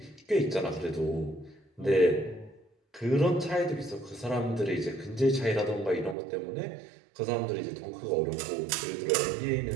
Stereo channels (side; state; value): left; drops out; at 6.2 s